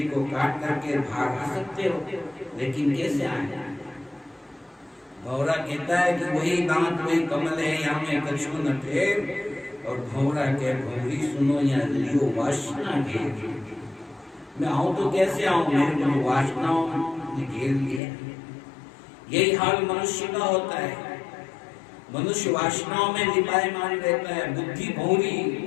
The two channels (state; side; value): drops out; right; at 18.0 s